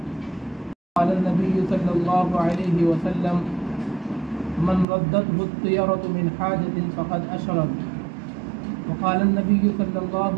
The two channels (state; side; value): drops out; left; at 4.9 s